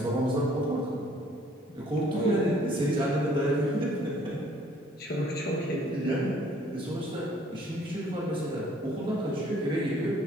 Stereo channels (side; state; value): both; normal; correlation 0.59